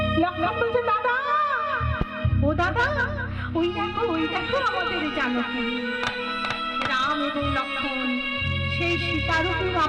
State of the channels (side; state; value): both; identical; correlation 1.00